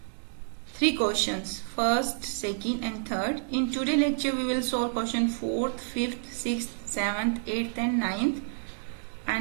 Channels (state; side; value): silent; left; digital silence